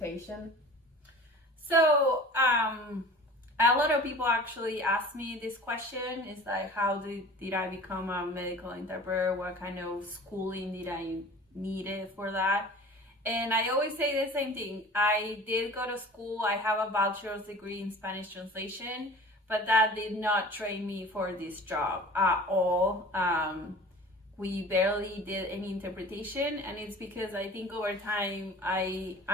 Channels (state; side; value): normal; both; correlation 0.42